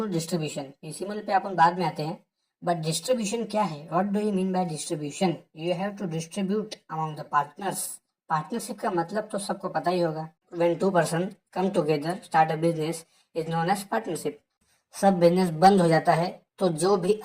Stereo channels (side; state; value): both; identical; correlation 1.00